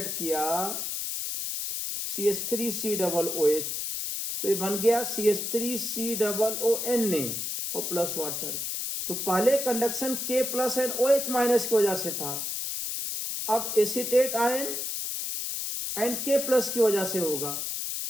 किया CH3COOH तो ये बन गया CH3COONA और प्लस वाटर। तो पहले conduction K plus and OH minus की वजह से था, अब acetate ion and K plus की वजह से होगा,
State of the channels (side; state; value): left; noise; hiss, 3 dB below the sound